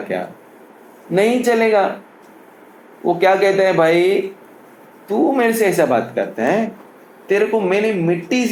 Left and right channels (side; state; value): both; identical; correlation 1.00